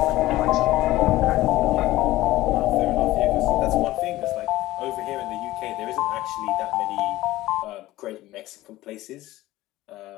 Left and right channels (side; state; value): right; quieter; 16.7 dB